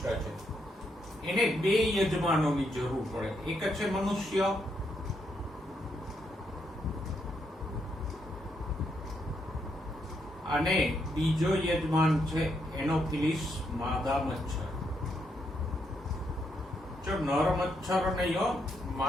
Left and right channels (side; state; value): both; normal; correlation 0.78